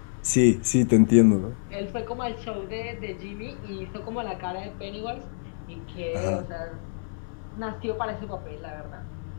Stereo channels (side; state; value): right; silent; digital silence